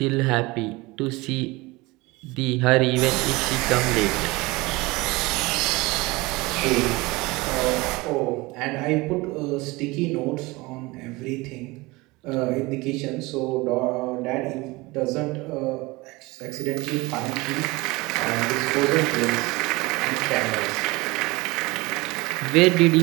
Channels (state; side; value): quieter; left; 22.6 dB